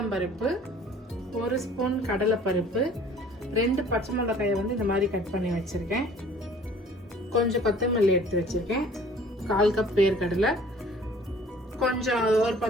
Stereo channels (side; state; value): both; normal; correlation 0.51